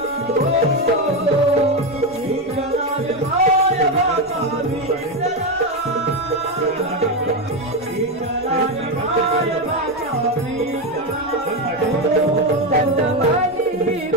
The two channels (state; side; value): noise; left; rumble, 27 dB below the sound